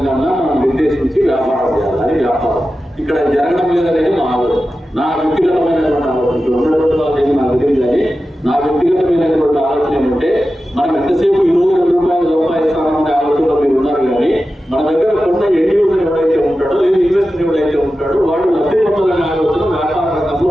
మనం నిర్దేశించి వ్యాపారం చేయాలి. అది వ్యాపారం ఇక్కడ జరగడం లేదనేది మా ఆలోచన, నా వ్యక్తిగతమైనటువంటి ఆలోచన. ఉండడం నాకు తెలియదు కానీ నా వ్యక్తిగతమైనటువంటి ఆలోచన ఏమంటే మనం ఎంతసేపు ఈ రోజు ₹2 సంపాదిస్తామనే ఆలోచనలో మీరు ఉన్నారు. కానీ మన దగ్గర కొన్న ఎండ్ యూజర్ ఎవరైతే ఉంటాడో లేదు ఇన్వెస్టర్ ఎవరైతే ఉంటాడో వాడు లబ్ధి పొందాలనే ఆలోచన వ్యాపార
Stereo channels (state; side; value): normal; both; correlation 0.93